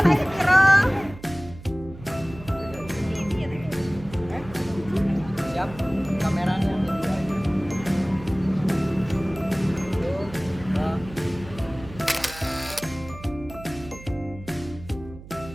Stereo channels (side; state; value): right; noise; hum, 16 dB below the sound